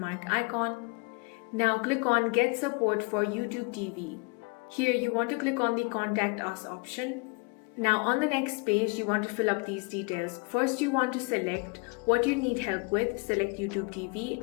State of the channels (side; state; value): right; quieter; 31.5 dB